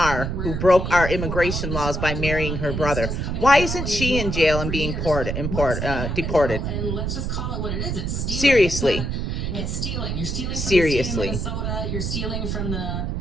who broke our immigration laws by marrying her brother. Why isn't she in jail and being deported? And let's just call it what it is. It's stealing. Seriously. It's stealing. You're stealing from Seriously. the state of Minnesota. You're stealing from the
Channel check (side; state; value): right; noise; rumble, 2 dB below the sound